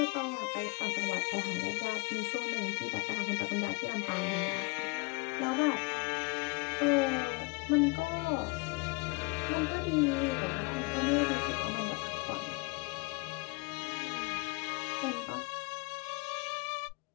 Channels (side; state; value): right; quieter; 29.6 dB